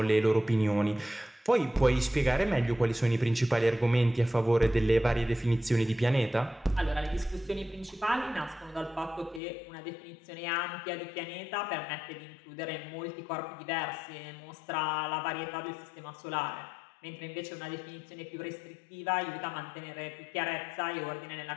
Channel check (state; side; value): drops out; right; at 9.4 s